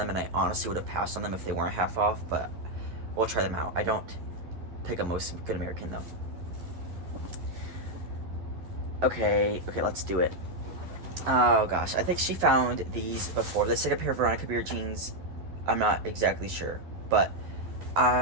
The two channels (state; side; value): late; left; 11 ms